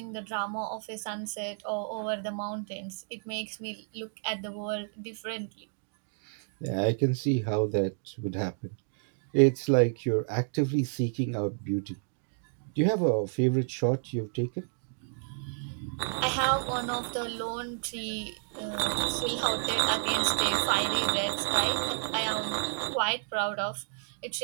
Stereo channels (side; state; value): left; silent; digital silence